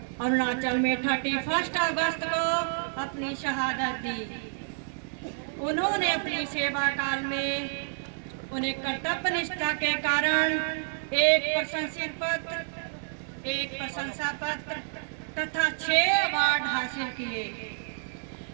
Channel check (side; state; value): left; silent; digital silence